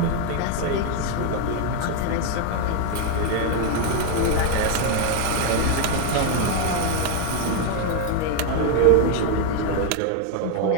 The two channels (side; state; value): both; different; correlation 0.01